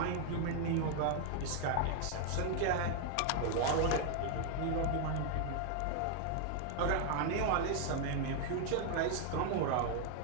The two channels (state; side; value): different; both; correlation 0.00